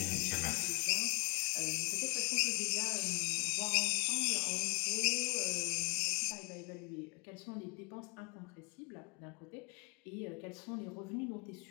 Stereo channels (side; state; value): right; quieter; 30.5 dB